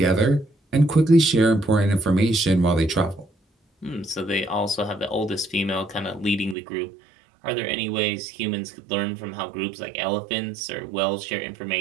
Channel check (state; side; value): drops out; left; at 6.6 s